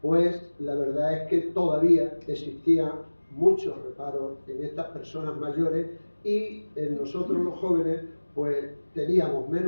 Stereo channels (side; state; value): both; inverted; correlation -1.00